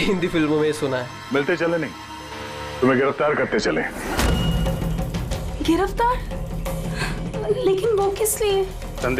फिल्मों में सुना है। मिलते चले नहीं, तुम्हें गिरफ्तार करते चले। गिरफ्तार? लेकिन वो किस लिए?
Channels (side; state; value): both; identical; correlation 1.00